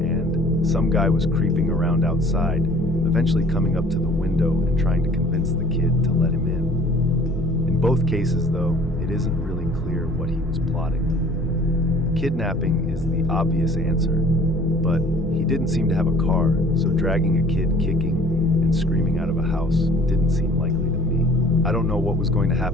and some guy was creeping around outside, eventually coming up to the window and trying to convince the kid to let him in. In both cases, though, it isn't really clear what he was plotting. Kidnapping is the obvious answer, but he didn't seem to have a car, so dragging a kid kicking and screaming out of a house didn't seem likely to me. I don't know what was going to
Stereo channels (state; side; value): normal; both; correlation 0.51